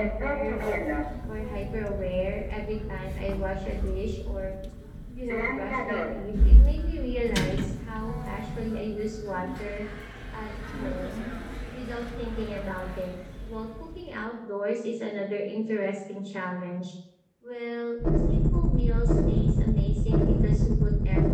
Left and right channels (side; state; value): both; identical; correlation 1.00